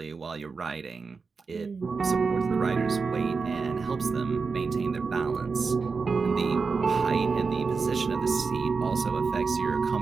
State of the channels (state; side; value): quieter; left; 4.8 dB